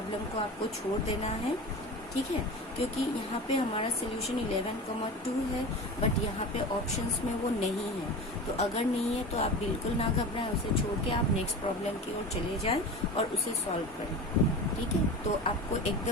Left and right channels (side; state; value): both; normal; correlation 0.31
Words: को आपको छोड़ देना है, ठीक है। क्योंकि यहाँ पे हमारा सोल्यूशन 11,2 है, बट यहाँ पे ऑप्शंस में वो नहीं है। तो अगर नहीं है तो आप बिल्कुल ना घबराएं, उसे छोड़ के आप नेक्स्ट प्रॉब्लम की ओर चले जाएं और उसे सॉल्व करें, ठीक है। तो आपको